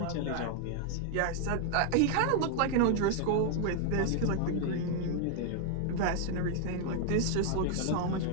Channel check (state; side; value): different; both; correlation 0.00